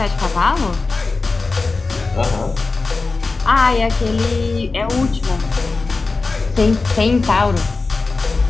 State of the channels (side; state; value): right; quieter; 3.9 dB